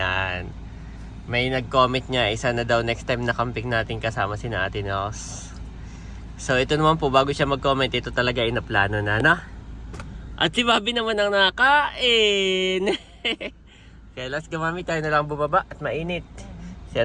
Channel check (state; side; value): identical; both; correlation 1.00